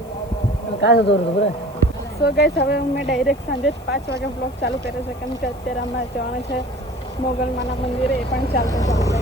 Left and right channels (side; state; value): left; noise; hiss, 27 dB below the sound